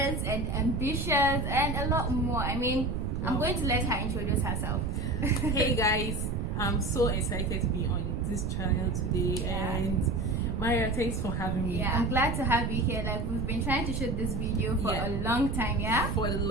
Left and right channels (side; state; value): right; noise; rumble, 1 dB below the sound